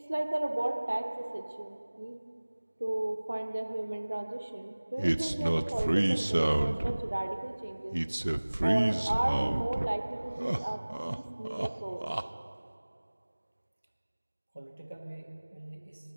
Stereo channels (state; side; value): inverted; both; correlation -1.00